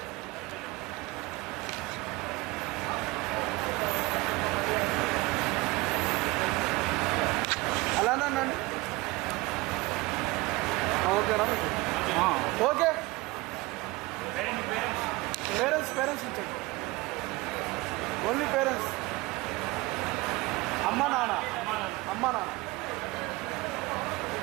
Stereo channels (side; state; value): left; quieter; 22.3 dB